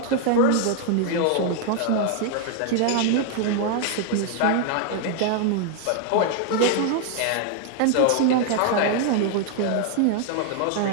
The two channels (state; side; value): different; both; correlation 0.00